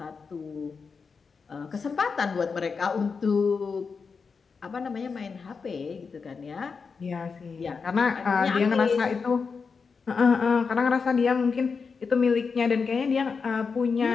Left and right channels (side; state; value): right; quieter; 5.2 dB